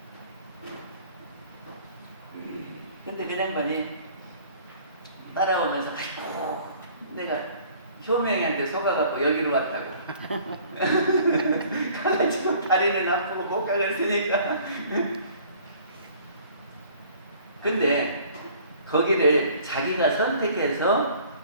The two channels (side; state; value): both; inverted; correlation -0.53